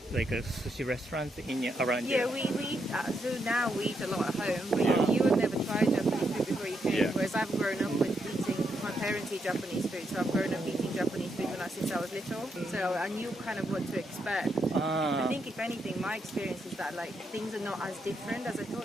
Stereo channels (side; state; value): both; normal; correlation 0.80